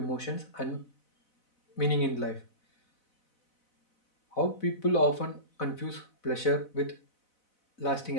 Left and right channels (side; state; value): right; late; 4.0 ms